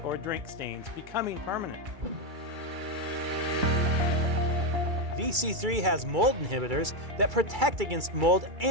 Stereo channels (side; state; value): left; late; 2.3 ms